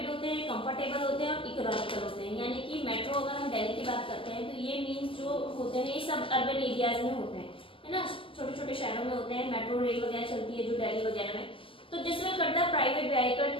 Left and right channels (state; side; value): late; right; 0.25 ms